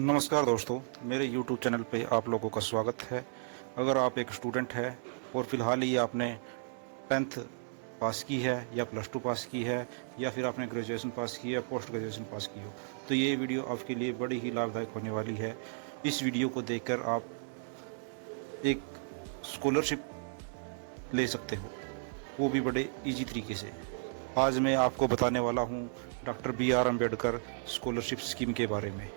दोस्तों, मेरे YouTube चैनल पे आप लोगों का स्वागत है। अगर आप एक स्टूडेंट है और फ़िलहाल ही आपने 10th पास की है या +2 पास की है या फिर आपने ग्रेजुएशन पास की है या पोस्ट ग्रेजुएशन पास की हो, तो ये वीडियो आपके लिए बड़ी ही लाभदायक होने वाली है। इस वीडियो को देखकर आप एक स्कॉलरशिप ले सकते हो, वो भी बड़े ईजी तरीके से। आज मैं आपको बताने वाला हूँ doctor BR Ambedkar scholarship scheme के बारे में।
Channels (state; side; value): silent; left; 55 dB below the other